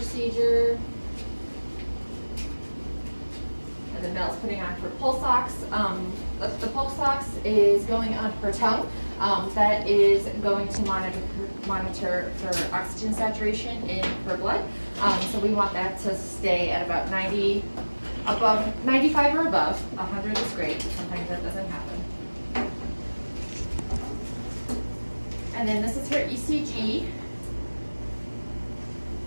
And then Mel's putting on her pulse ox. The pulse ox is going on her tongue. That is going to monitor her oxygen saturation in her blood. So we want that to stay at about 95 or above. 100 is great. Sometimes that doesn't happen. And then this is her ECG.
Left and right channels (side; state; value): both; inverted; correlation -1.00